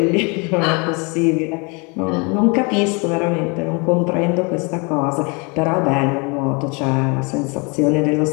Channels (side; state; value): right; quieter; 30.8 dB